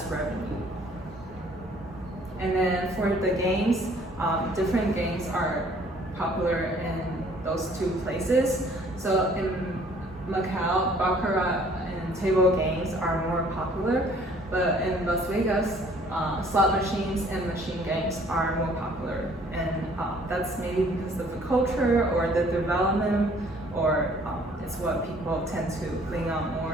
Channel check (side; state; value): both; normal; correlation 0.58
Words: revenue. And then for the games, different games are popular in those two places. So in Macau, baccarat and table games are more popular. But in Las Vegas, slot machines and machine games are more popular, and that's maybe because of the culture or the development, or it's what people tend to lean on